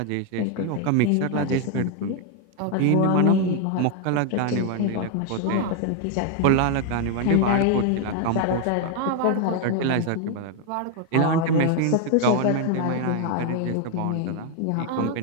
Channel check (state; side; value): different; both; correlation 0.01